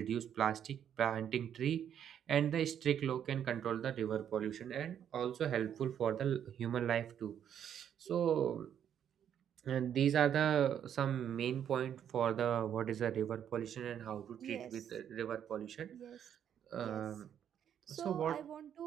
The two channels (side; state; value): left; quieter; 9.2 dB